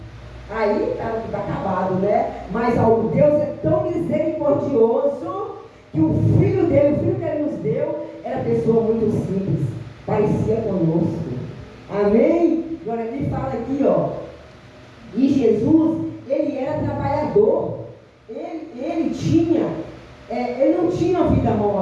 Aí está acabado, né? Mas o Deus é tão misericordioso que o filho que ele nos deu, era pessoa muito simples, parecia conosco. Amém? Agora ele fala aqui, ó. E Jesus, ele era trabalhador. Ele não tinha vida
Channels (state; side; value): identical; both; correlation 1.00